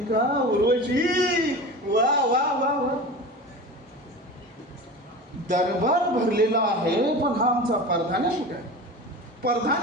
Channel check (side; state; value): both; normal; correlation 0.32